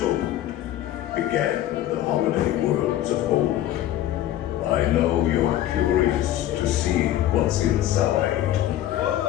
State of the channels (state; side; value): quieter; right; 13.0 dB